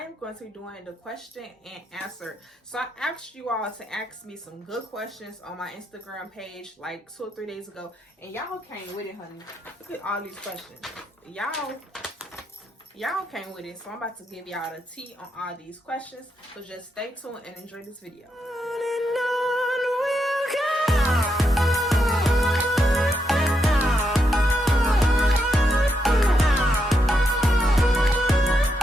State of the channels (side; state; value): both; normal; correlation 0.81